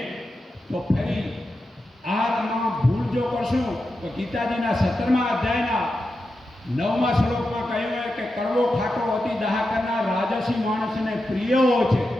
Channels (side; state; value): both; normal; correlation 0.89